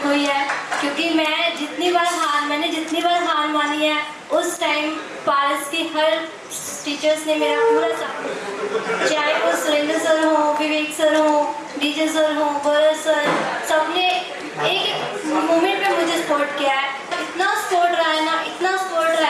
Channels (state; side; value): identical; both; correlation 1.00